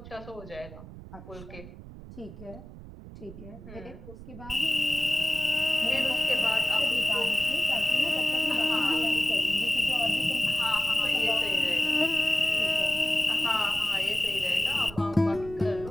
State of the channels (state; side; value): noise; right; rumble, 15 dB below the sound